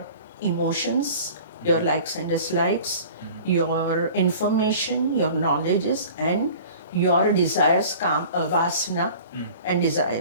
emotions, your likes and dislikes, your information, your knowledges, and your desires, vasana and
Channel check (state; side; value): inverted; both; correlation -0.43